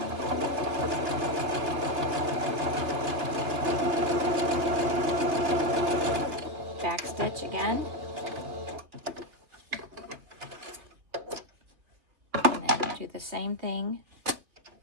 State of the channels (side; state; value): left; late; 2.9 ms